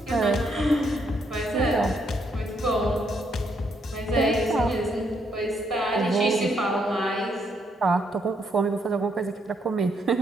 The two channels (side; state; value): both; normal; correlation 0.74